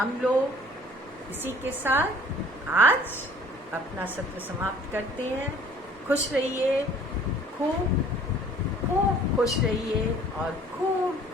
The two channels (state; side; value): normal; both; correlation 0.53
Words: लोग इसी के साथ आज अपना सत्र समाप्त करते हैं। खुश रहिए, खूब खूब खुश रहिए और खूब